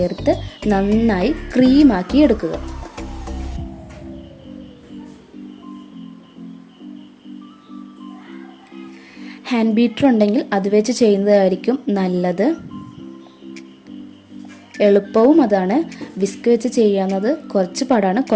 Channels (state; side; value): identical; both; correlation 1.00